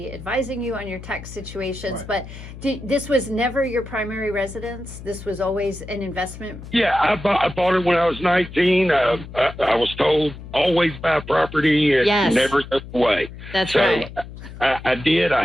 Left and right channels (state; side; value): noise; left; hum, 14 dB below the sound